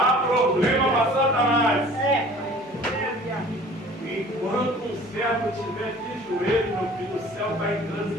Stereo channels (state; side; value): normal; both; correlation 0.48